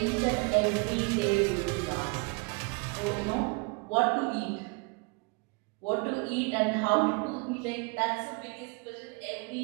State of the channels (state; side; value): quieter; left; 30.7 dB